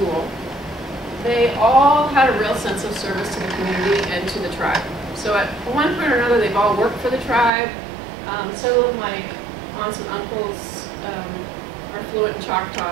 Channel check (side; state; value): left; drops out; at 7.5 s